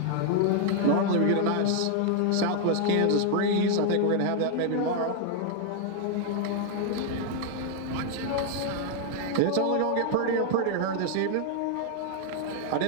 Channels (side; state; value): both; different; correlation 0.00